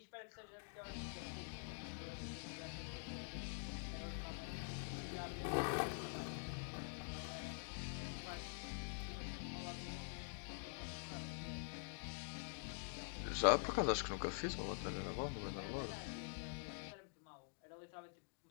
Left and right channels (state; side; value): silent; right; digital silence